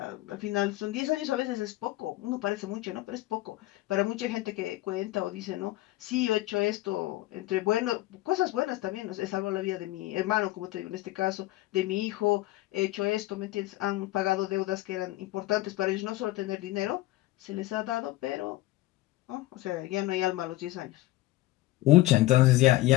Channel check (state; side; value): quieter; right; 17.4 dB